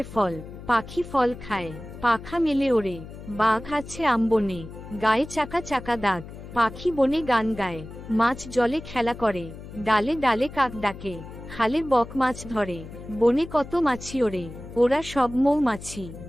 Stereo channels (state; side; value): noise; left; hum, 14 dB below the sound